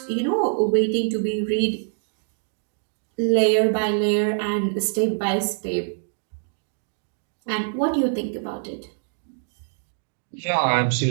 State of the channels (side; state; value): left; silent; digital silence